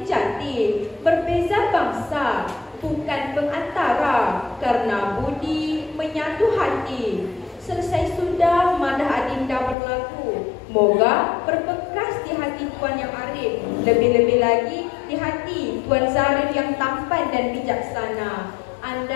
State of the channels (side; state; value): right; drops out; at 9.8 s